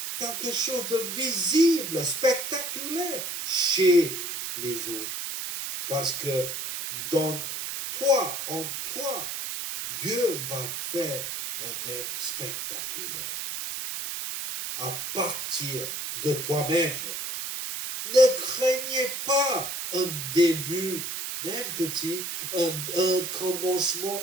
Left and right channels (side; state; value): right; noise; hiss, 4 dB below the sound